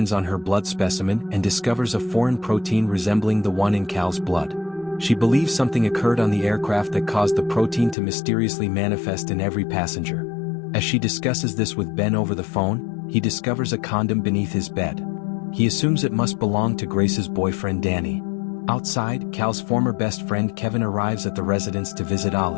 on her blood specimen and discovers a foreign protein resembling the one in Cal's blood. She believes something occurred on the aircraft that caused the protein to mysteriously manifest in every passenger. As she discusses this with Ben over the phone, he discovers a condom beneath his bed. He assumes it must belong to Grace's boyfriend Danny. Outside, Cal's former best friend Kevin arrives at the residence to visit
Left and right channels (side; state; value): right; drops out; at 8.0 s